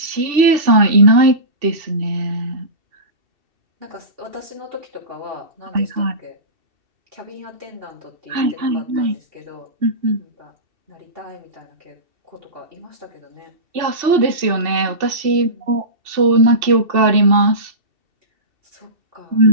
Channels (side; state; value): left; late; 2.7 ms